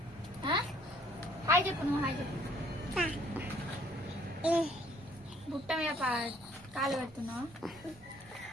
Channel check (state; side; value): normal; both; correlation 0.61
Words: హాయ్ చెప్పు. నువ్వు హాయ్ చెప్పు. బుట్ట మీద కాలు పెడుతున్నావు.